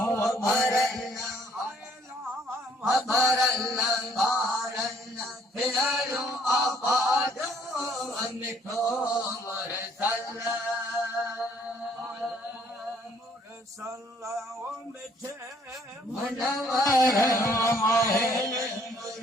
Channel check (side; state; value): both; normal; correlation 0.63